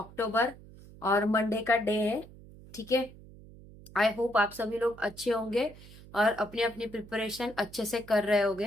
और मंडे का डे है। ठीक है, आई होप आप सभी लोग अच्छे होंगे और अपनी अपनी प्रिपरेशन अच्छे से कर रहे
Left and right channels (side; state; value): right; noise; hum, 19 dB below the sound